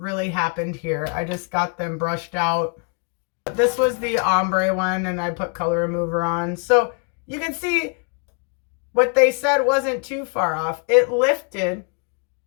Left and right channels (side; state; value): right; quieter; 36.4 dB